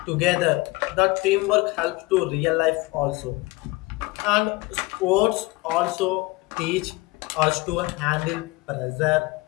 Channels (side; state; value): right; quieter; 22.5 dB